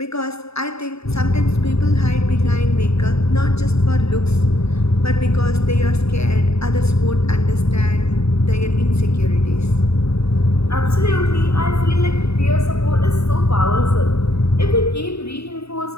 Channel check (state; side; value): late; right; 0.78 ms